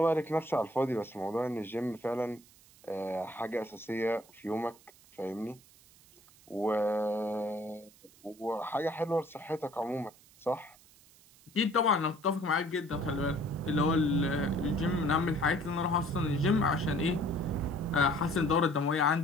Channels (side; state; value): right; noise; hiss, 26 dB below the sound